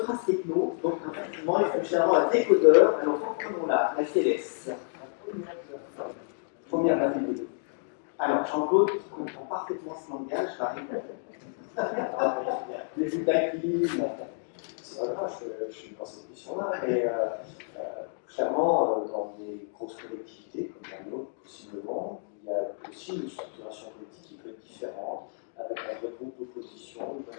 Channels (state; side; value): silent; right; digital silence